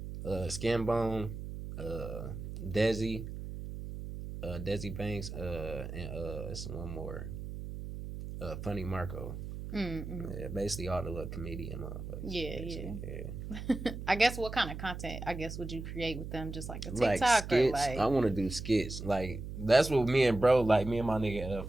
Skinbone, Desi Banks, and it's one more, Funny Marco. Yeah, basically all the little comedian motherfuckers. Yeah. I guess what kind of content would you create with them? Just like a TikTok like skits. or I want to do skits. Like that's what me and my nigga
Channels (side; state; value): right; noise; hum, 8 dB below the sound